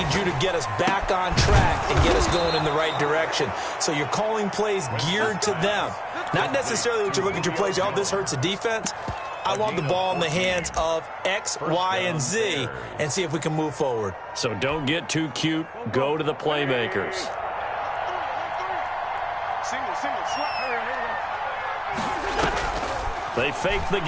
you to get us back on track and get us going in the right direction. So you're calling plays geared to them. Not necessarily that you look at your plays, oh, this hurts the defense. I want the ball in the hands of X, Y, and Z and see if we can move forward. So don't get too cute. Go to the playmakers. They fake the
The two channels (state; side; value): identical; both; correlation 1.00